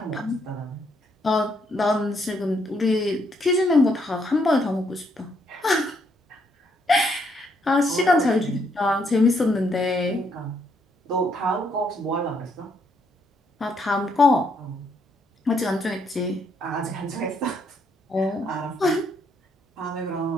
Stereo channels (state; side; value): normal; both; correlation 0.73